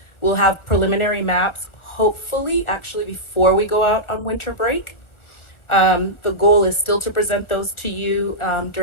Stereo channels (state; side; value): late; right; 1.4 ms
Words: We'll have preliminary maps, hopefully, actually before we go out on winter break. The goal is still to present those to you